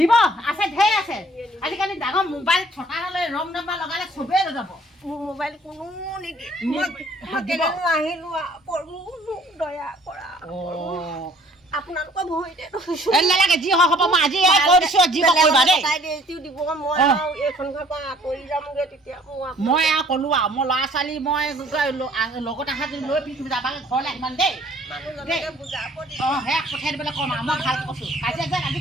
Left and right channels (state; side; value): normal; both; correlation 0.57